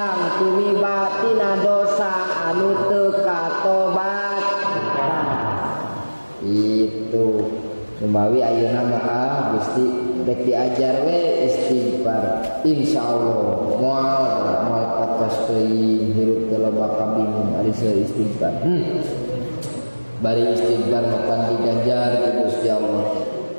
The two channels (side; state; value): both; inverted; correlation -1.00